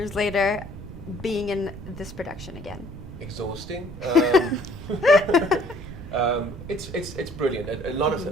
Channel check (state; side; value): noise; right; rumble, 13 dB below the sound